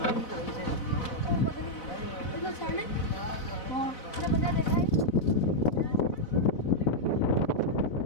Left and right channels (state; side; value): late; right; 4.0 ms